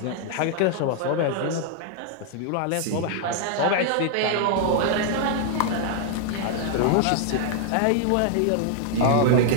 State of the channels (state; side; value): different; both; correlation 0.00